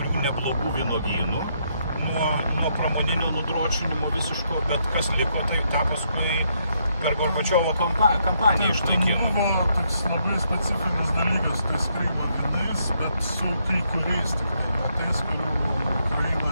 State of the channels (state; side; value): inverted; both; correlation -0.75